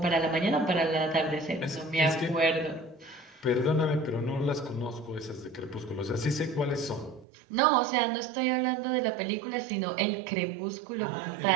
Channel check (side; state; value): left; drops out; at 7.2 s